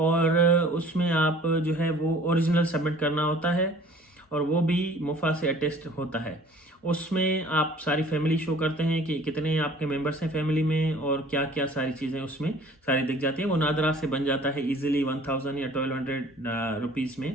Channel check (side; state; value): both; normal; correlation 0.50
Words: उसमें आप जो है वो ओरिजिनल सबमिट करना होता है, और वो भी मुफा से अटेस्ट होता है। उसमें आप सारी फैमिली शो करते हैं कि कितने आपके मेंबर्स हैं फैमिली में, और क्या क्या सारी चीज़ें उसमें सारी दिख जाती है। वो नादरा से बन जाता है इजीली 1000 या 1200 रुपीज़